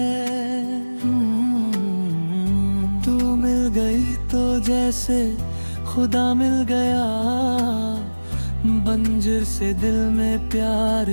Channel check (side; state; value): both; inverted; correlation -1.00